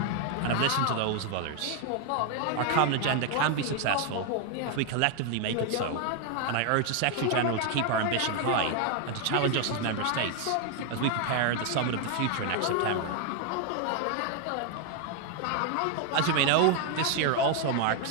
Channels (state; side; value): different; both; correlation 0.01